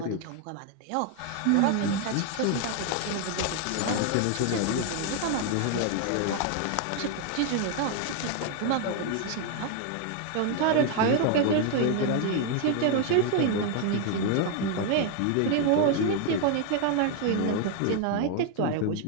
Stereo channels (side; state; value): both; different; correlation 0.00